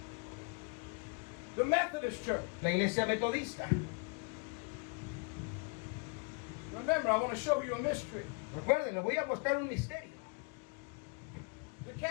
The Methodist Church. La iglesia metodista. Remember, I want to show you a mystery. Recuerden, les voy a mostrar un misterio. The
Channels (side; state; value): right; quieter; 32.9 dB